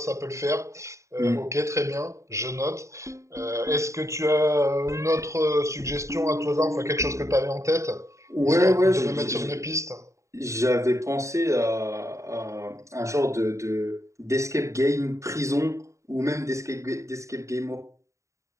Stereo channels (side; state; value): left; late; 0.15 ms